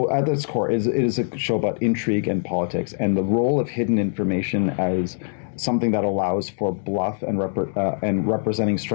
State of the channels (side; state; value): right; silent; digital silence